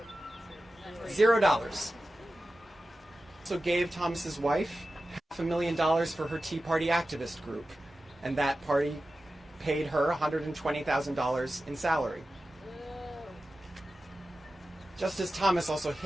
$0. Also gave Thomas's wife $500,000 for her Tea Party activist group, and that party paid her $120,000 in salary. Justice Thomas also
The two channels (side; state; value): both; normal; correlation 0.94